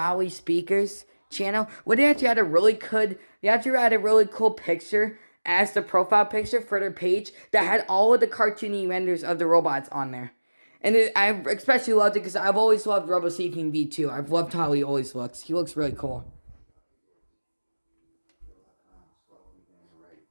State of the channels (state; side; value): inverted; both; correlation -1.00